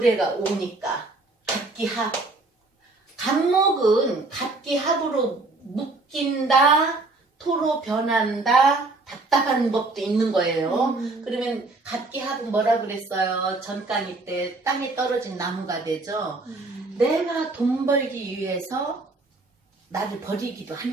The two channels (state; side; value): quieter; left; 3.3 dB